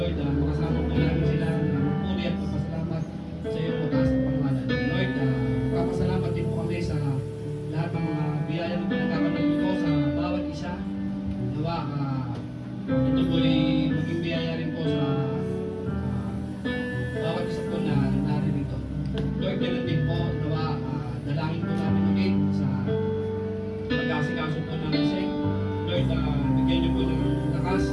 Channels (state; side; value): identical; both; correlation 1.00